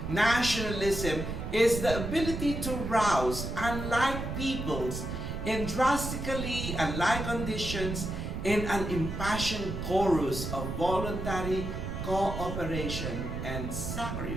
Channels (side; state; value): right; noise; rumble, 5 dB below the sound